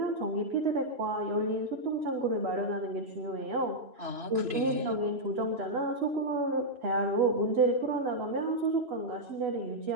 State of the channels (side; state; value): left; late; 3.0 ms